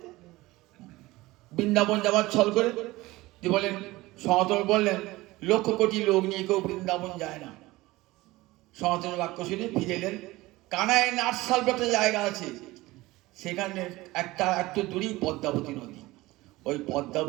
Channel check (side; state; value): left; quieter; 19.4 dB